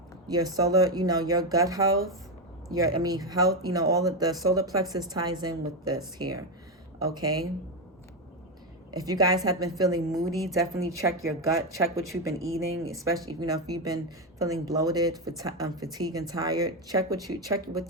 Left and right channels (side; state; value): both; normal; correlation 0.09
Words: Your solar, you know, your gut health, health, you know, all of the solar plexus ties in with this here, okay? If you guys have been feeling moody, definitely check your gut, check what you've been eating, especially, you know, if you've been feeling bloated, fatigued and tired, check